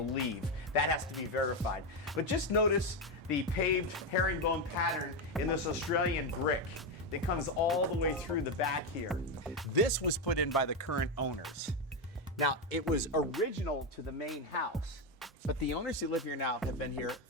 That has to be verified. But just notice the paved herringbone pattern in this Australian brick that comes all the way through the back here. This was put in by the current owners. Now, it was original to the main house, but the owners who live here now have been here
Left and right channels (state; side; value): normal; both; correlation 0.09